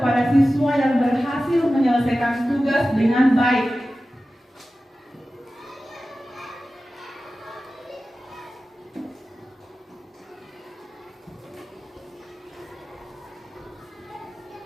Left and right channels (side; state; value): both; normal; correlation 0.95